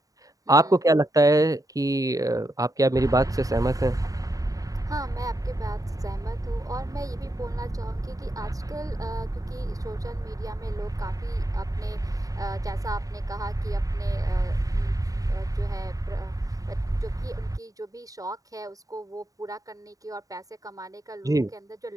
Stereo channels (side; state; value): left; late; 0.17 ms